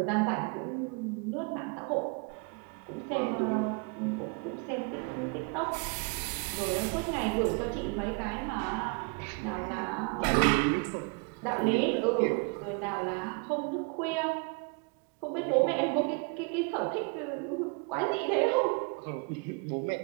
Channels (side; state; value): left; quieter; 32.6 dB